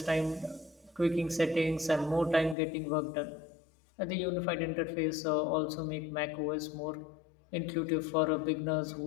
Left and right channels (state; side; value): drops out; right; at 2.6 s